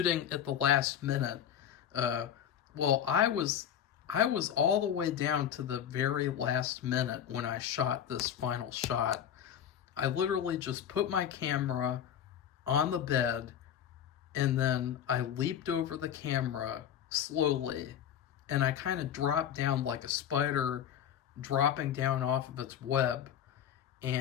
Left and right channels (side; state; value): right; quieter; 9.5 dB